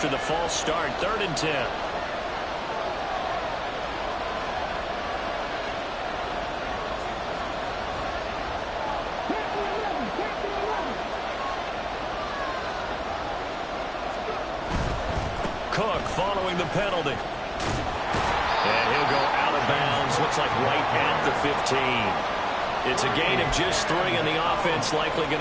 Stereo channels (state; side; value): identical; both; correlation 1.00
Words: the false start. 3rd and 10. Cook following the penalty. And he'll go out of bounds. Looks like right at the 15. It's a gain of just 3, and the offense likely